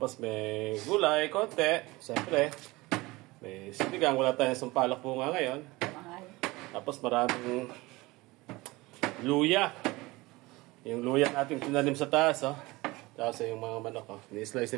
may gulay, konti. Siyempre, may sinigang. Wala tayong sampalok po nga ngayon. Tapos maraming luya. Yung luya natin tinanim sa taas. Oh. Tapos yung mga manok. Oh. Ni-slice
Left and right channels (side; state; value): left; quieter; 21.5 dB